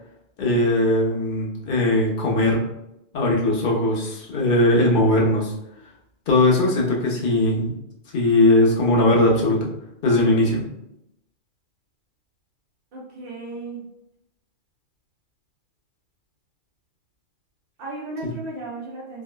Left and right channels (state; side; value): late; left; 2.3 ms